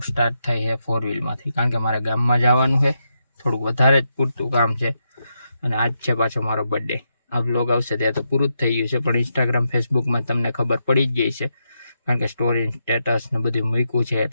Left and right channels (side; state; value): both; inverted; correlation -0.83